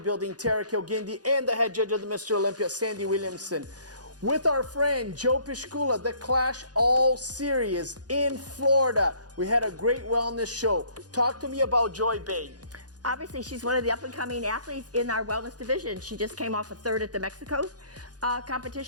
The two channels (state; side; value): late; left; 0.69 ms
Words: Terrick El Guindy and the head judge of the Mr. Olympia, Sandy Williamson. With our friend Joe Piscula, the Clash All Series in Florida. We had a great wellness show. Talk to me about Joy Bay. Obviously, she's one of the up-and-coming athletes in our wellness division. She just came off a third at the Mexico